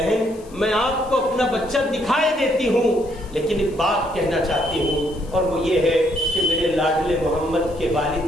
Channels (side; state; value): left; noise; hiss, 25 dB below the sound